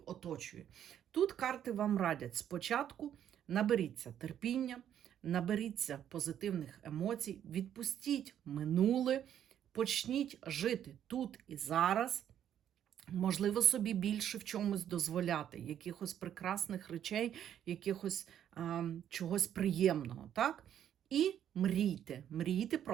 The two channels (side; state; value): left; quieter; 10.1 dB